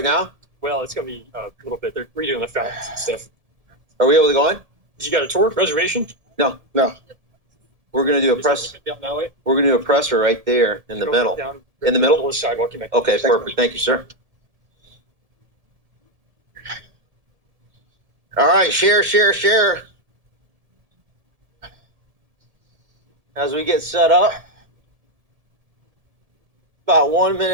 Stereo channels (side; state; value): left; late; 1.7 ms